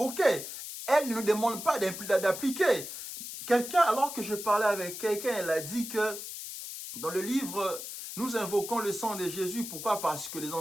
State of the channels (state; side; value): noise; left; hiss, 9 dB below the sound